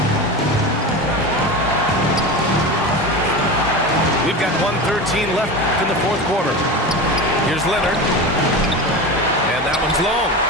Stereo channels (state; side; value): normal; both; correlation 0.26